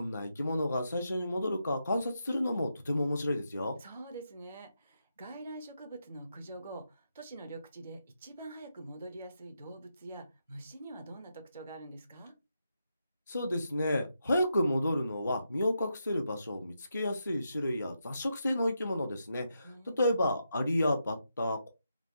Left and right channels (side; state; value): both; inverted; correlation -0.83